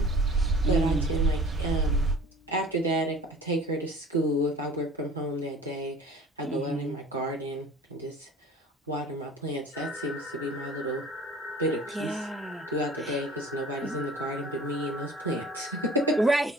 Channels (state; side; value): normal; both; correlation 0.45